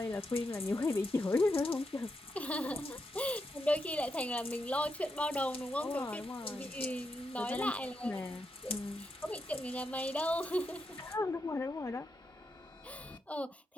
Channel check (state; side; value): normal; both; correlation 0.84